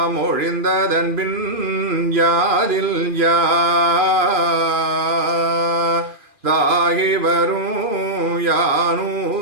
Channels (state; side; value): late; left; 2.5 ms